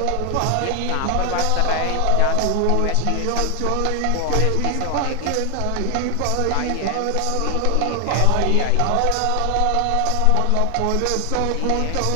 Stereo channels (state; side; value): different; both; correlation 0.00